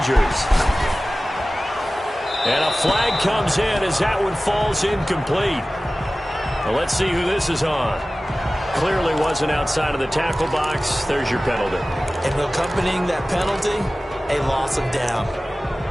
And a flag comes in as that one falls incomplete. Well, let's see who this is on. Clearly wasn't outside of the tackle box. There's your penalty. And accompanying that penalty, a loss of down.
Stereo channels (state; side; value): normal; both; correlation 0.97